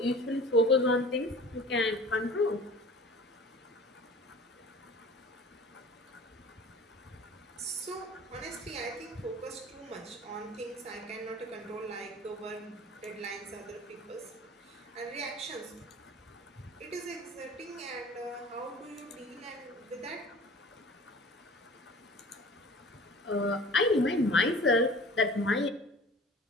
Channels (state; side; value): normal; both; correlation 0.43